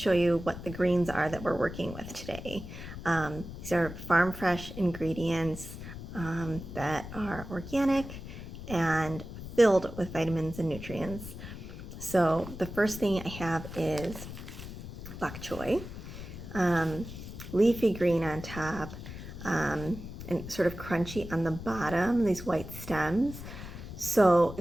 you what the greens are that we're working with today. These are farm fresh ingredients that are organic and filled with vitamins and nutrients. So the first thing I have is bok choy, leafy green on top, and sort of crunchy on the bottom, these white stems. So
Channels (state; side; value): noise; left; rumble, 11 dB below the sound